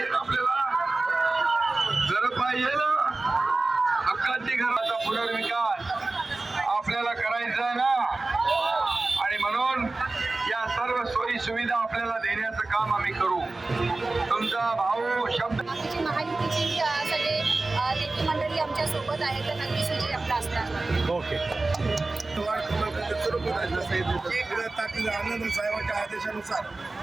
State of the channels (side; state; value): left; quieter; 3.2 dB